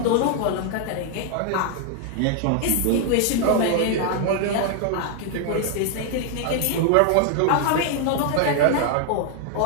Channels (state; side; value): different; both; correlation 0.00